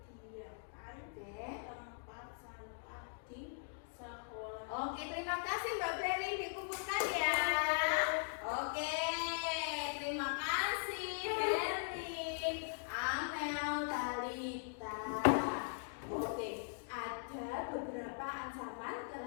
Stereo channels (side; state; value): right; silent; digital silence